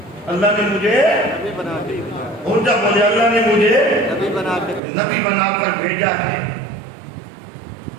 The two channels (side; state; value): left; drops out; at 4.8 s